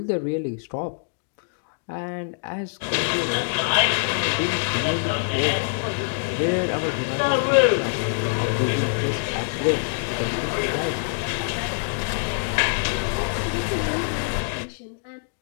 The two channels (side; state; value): right; silent; digital silence